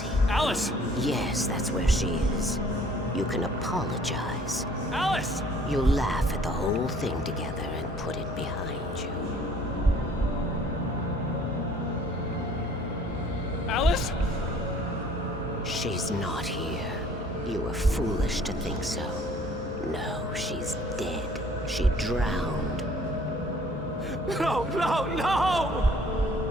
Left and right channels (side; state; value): both; normal; correlation 0.55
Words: Alice! Yes, that's where she is. You can apologize. Alice! You'll laugh at the whole thing together and put it behind you. Alice? She's not here. You were foolish to think so. No, she's dead. She drowned. No, no, no!